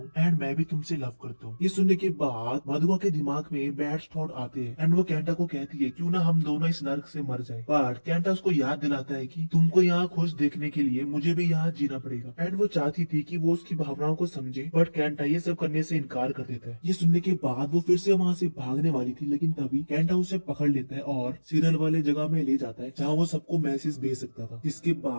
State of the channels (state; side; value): inverted; both; correlation -1.00